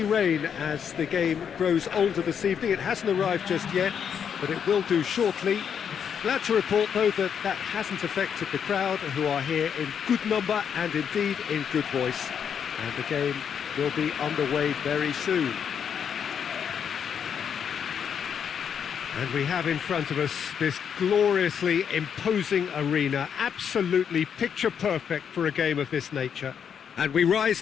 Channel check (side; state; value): right; quieter; 7.7 dB